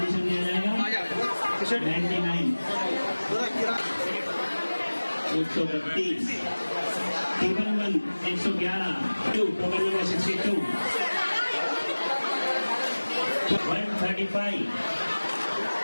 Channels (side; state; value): both; inverted; correlation -1.00